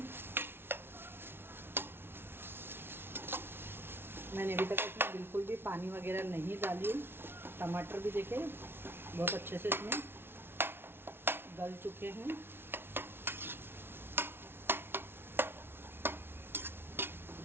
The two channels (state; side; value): late; left; 0.11 ms